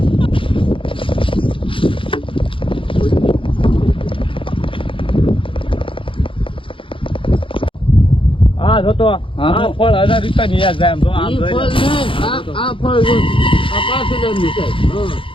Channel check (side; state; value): right; late; 0.25 ms